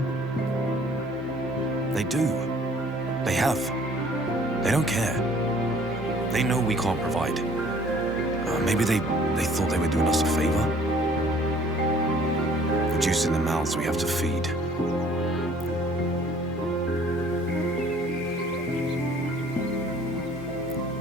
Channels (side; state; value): both; normal; correlation 0.55